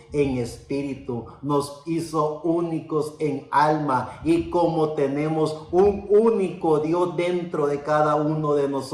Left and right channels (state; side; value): identical; both; correlation 1.00